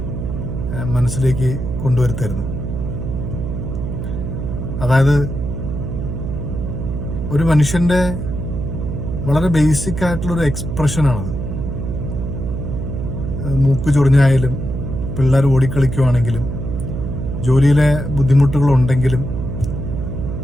മനസ്സിലേക്ക് കൊണ്ടുവരുത്തായിരുന്നു. അതായത് ഒരു മനുഷ്യന്റെ വളരെ ബേസിക് ആയിട്ടുള്ളൊരു എക്സ്പ്രഷനാണത്. മൂക്ക് ചൊറിഞ്ഞായാലും, പിള്ളേർ ഓടിക്കളിക്കുവാണെങ്കിലും, ജോലിയിലെ ബുദ്ധിമുട്ടുകളുണ്ടെങ്കിലും,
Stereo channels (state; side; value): noise; right; hum, 4 dB below the sound